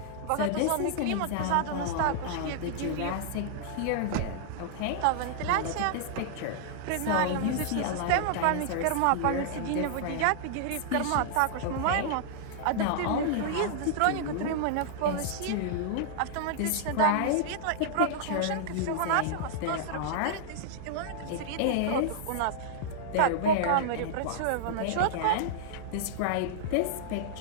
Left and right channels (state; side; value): different; both; correlation -0.01